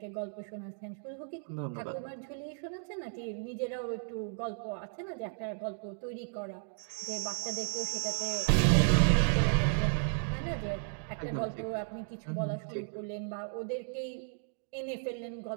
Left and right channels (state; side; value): silent; left; digital silence